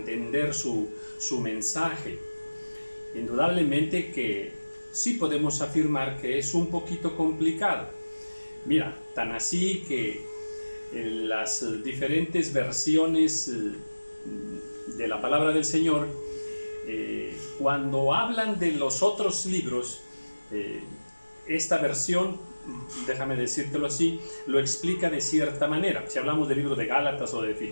su mensaje? Indudablemente que sí podemos afirmar que es un poquito complicado. Mira, tan así que las diferentes versiones de la palabra del Señor, cuando hablan de los otros libros, esta versión, déjame decírtelo así, lo explica de cierta manera. Si hablamos del libro de Gálatas o de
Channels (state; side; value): inverted; both; correlation -1.00